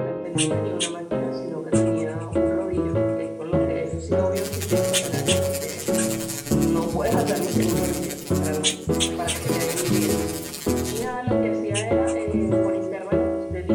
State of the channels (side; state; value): both; identical; correlation 1.00